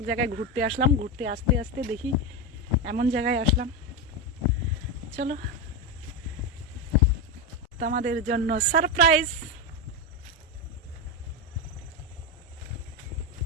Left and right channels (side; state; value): both; normal; correlation 0.12